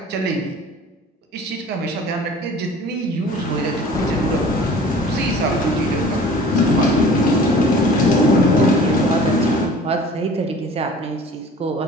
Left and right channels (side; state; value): both; normal; correlation 0.46